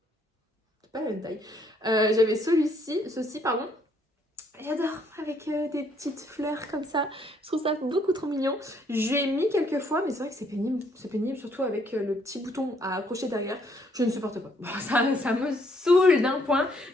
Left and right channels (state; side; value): normal; both; correlation 0.68